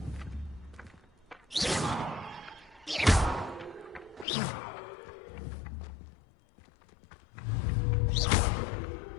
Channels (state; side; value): drops out; right; at 4.2 s